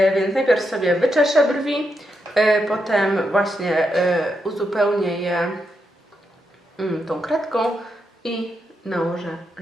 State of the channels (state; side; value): normal; both; correlation 0.83